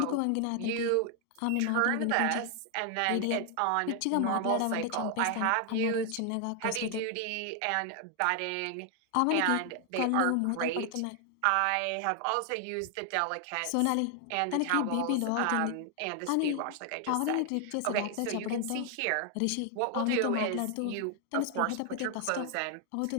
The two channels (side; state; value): both; different; correlation 0.00